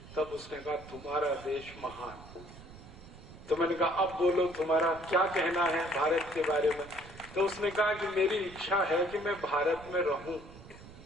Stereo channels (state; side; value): noise; right; rumble, 17 dB below the sound